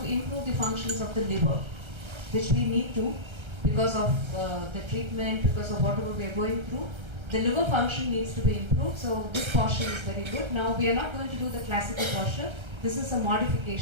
improve the functions of the liver, which we need to because of the treatment, because of whatever we are going through. The liver function needs to be improved, so this posture is very good. Now we are not going to do the classical posture. This is a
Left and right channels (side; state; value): left; late; 1.3 ms